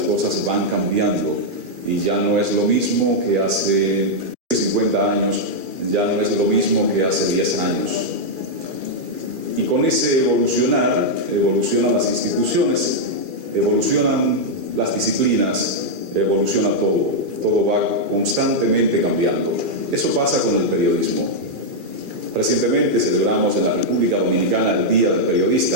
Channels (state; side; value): late; left; 2.4 ms